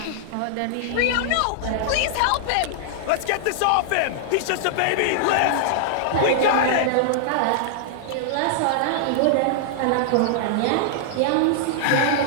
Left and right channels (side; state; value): both; different; correlation -0.01